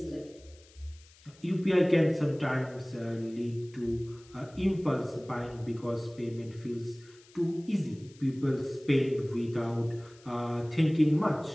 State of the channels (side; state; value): left; noise; hiss, 26 dB below the sound